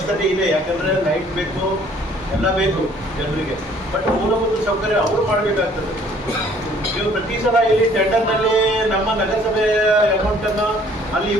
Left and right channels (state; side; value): normal; both; correlation 0.58